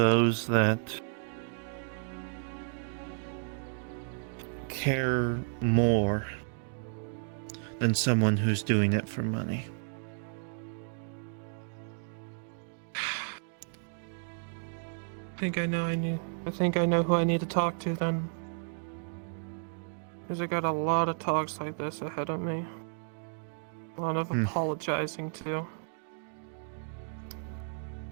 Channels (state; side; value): silent; left; digital silence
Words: that care more than someone who's doing it for money. I think I know who I need to talk to then. Because I got a lot of talks like this ahead of me. A lot of apologizing too.